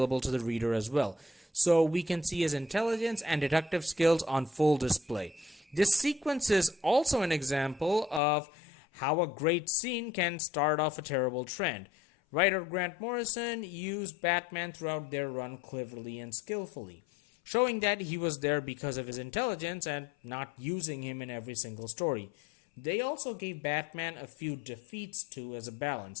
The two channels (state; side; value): drops out; right; at 8.2 s